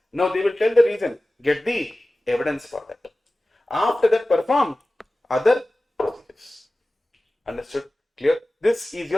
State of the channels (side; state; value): both; normal; correlation 0.97